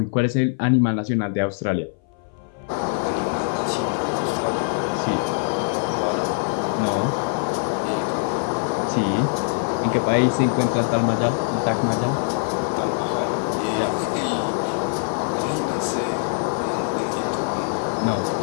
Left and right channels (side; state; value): right; silent; 59 dB below the other